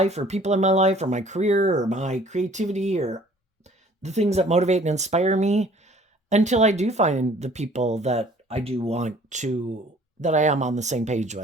or people in my life or my career or my creativity or the things that motivate and inspire me until I do find the people that I do want to, that I am on the same page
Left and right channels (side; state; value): both; normal; correlation 0.54